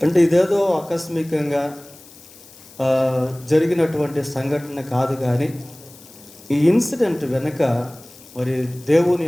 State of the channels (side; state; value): left; noise; hiss, 22 dB below the sound